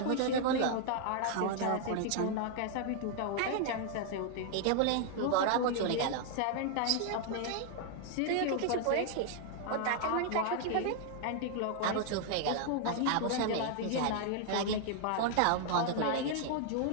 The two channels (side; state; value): both; different; correlation 0.00